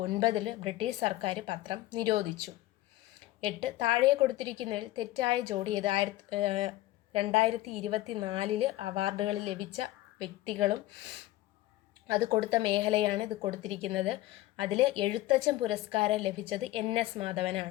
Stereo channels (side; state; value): right; quieter; 16.4 dB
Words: ബ്രിട്ടീഷ് സർക്കാർ പത്രം നിരോധിച്ചു. 8, താഴെ കൊടുത്തിരിക്കുന്നതിൽ തെറ്റായ ജോഡി ഏത്. 2024 അവാർഡുകൾ ലഭിച്ച വ്യക്തികളും അത് കൊടുത്ത മേഖലയാണ് ഇത് കൊടുത്തിരിക്കുന്നത്. അതിൽ എഴുത്തച്ഛൻ പുരസ്കാരം ലഭിച്ചത് NS